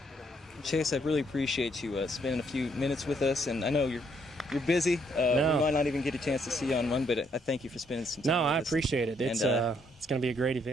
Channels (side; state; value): both; normal; correlation 0.71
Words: Chase, I really appreciate you spending a few minutes with us, and I know you're busy. No. We might not even get a chance to see you on one, but I thank you for spending some time with us. I appreciate it. It's going to be a great